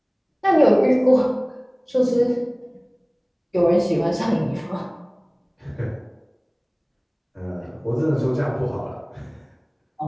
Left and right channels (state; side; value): identical; both; correlation 1.00